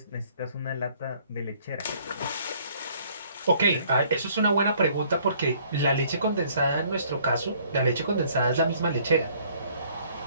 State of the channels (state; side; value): inverted; both; correlation -0.60